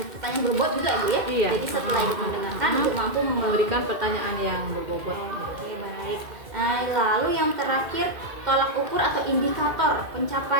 pertanyaan berbobot juga, Bu ya? Iya. Jadi setelah Ibu mendengarkan, Ibu mampu memberikan pertanyaan yang berbobot. Oke, baik. Nah, lalu yang terakhir, tolak ukur atau indikator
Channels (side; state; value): left; late; 2.3 ms